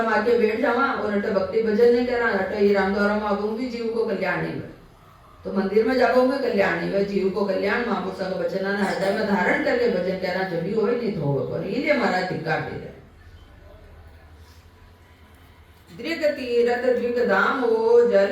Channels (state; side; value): identical; both; correlation 1.00